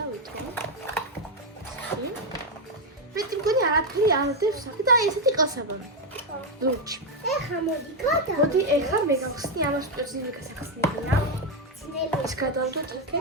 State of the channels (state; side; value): normal; both; correlation 0.04